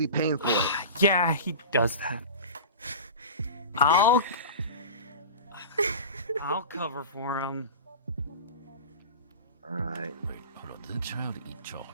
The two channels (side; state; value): both; inverted; correlation -0.32